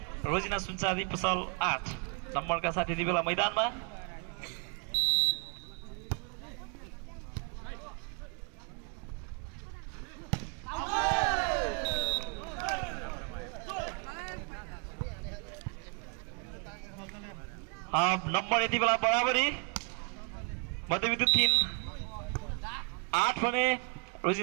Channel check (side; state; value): left; quieter; 36.5 dB